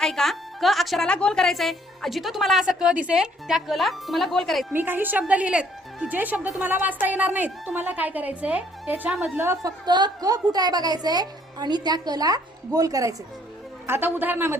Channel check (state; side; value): normal; both; correlation 0.63